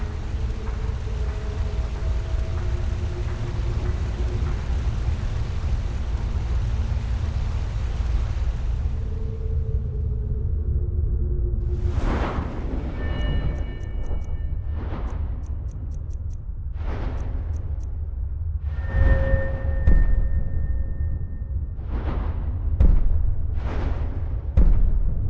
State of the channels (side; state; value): both; identical; correlation 1.00